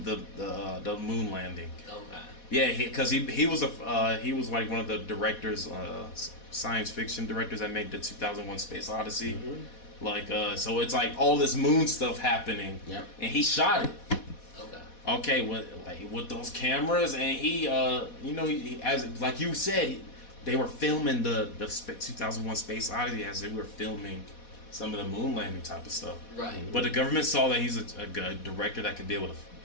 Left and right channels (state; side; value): late; right; 4.1 ms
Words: the moon landing. Okay. Yeah, because he was one of the directors, science fiction directors that made the 2001 Space Odyssey. So it's all this moon stuff happening. Yep. And he shot it. Okay. with those cameras, and he as like you said, they were filming the 2001 Space Odyssey as they were filming some of the moon landing type of stuff. Right. But the government saw that he's a good director that could be able to